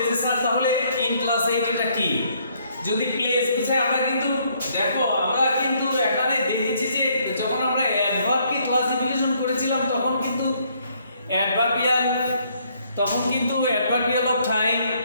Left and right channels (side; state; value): both; inverted; correlation -0.68